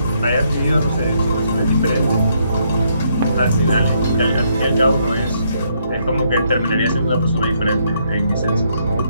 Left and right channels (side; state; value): both; inverted; correlation -0.73